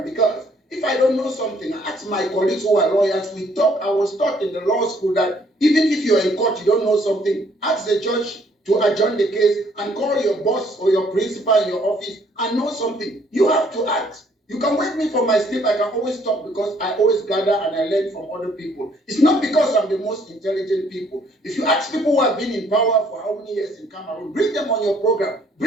because if I don't know something, I ask my colleagues who are lawyers, we talk. I was taught in the law school that even if you're in court, you don't know something, ask the judge to adjourn the case and call your boss or your principal in your office and know something. You have to ask. You can wake me from my sleep. I can always talk because I always gather and I learn from other people. It's not because I'm the most intelligent people. If you ask people who have been in power for how many years in Cameroon, bring them on your program.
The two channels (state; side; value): normal; both; correlation 0.64